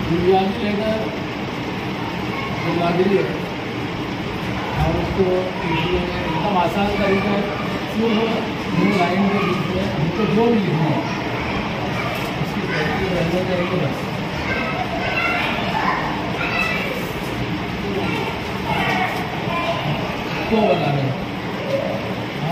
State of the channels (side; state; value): both; identical; correlation 1.00